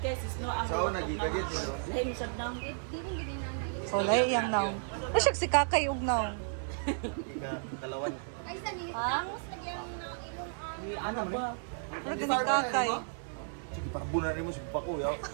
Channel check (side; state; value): left; silent; 56 dB below the other